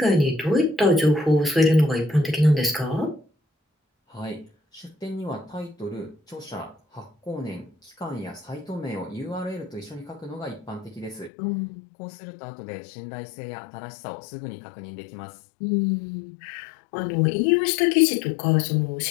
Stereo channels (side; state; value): right; drops out; at 11.3 s